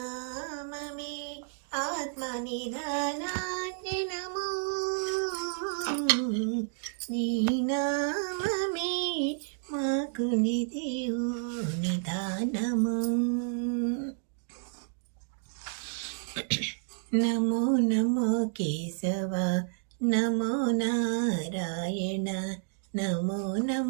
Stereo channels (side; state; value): left; silent; digital silence